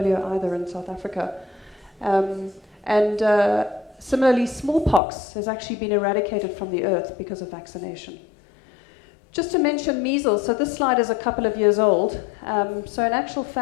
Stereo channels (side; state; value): right; drops out; at 5.0 s